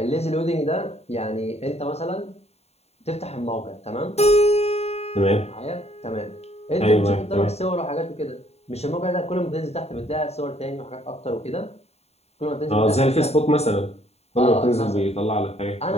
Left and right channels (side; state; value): right; late; 0.30 ms